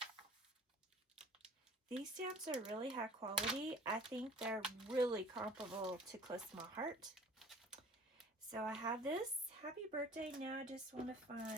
These stamps are really high quality. I think they're really comparable to Close to My Heart. So I have this Happy Birthday. Now I just want to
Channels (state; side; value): normal; both; correlation 0.49